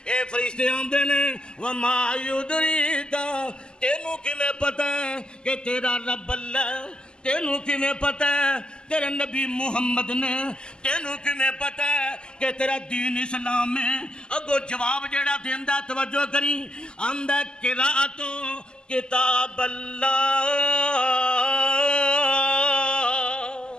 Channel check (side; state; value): right; late; 0.048 ms